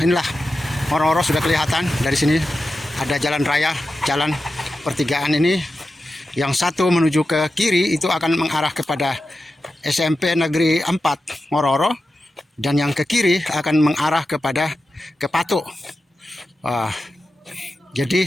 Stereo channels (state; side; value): normal; both; correlation 0.91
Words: Oro-Oro sudah kelihatan dari sini. Ada jalan raya, jalan pertigaan ini. Yang satu menuju ke kiri itu akan mengarah kepada SMP Negeri 4 Oro-Oro, dan yang ke kiri akan mengarah ke Patuk.